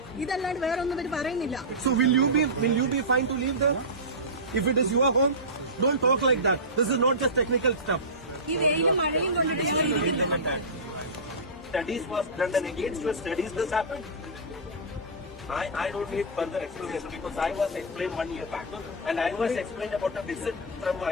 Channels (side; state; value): both; normal; correlation -0.14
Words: ഇതല്ലാണ്ട് വേറെ ഒന്നും ഇവര് പറയുന്നില്ല. So will you be fine to leave there if it is your home? Don't talk like that. This is not just technical stuff. ഈ വെയിലും മഴയും കൊണ്ടിട്ട് Studies was done and against your studies this happened. I don't need further explanation because I was explained 1 year back and I was explained about a visit from